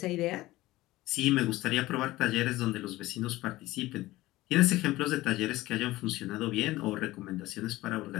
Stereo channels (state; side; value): quieter; right; 17.8 dB